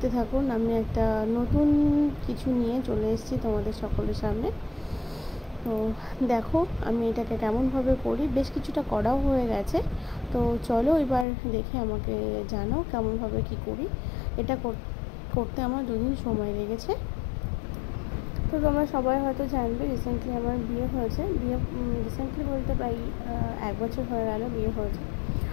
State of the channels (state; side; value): drops out; right; at 11.2 s